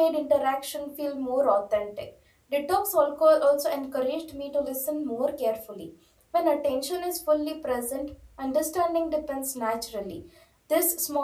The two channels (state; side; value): identical; both; correlation 1.00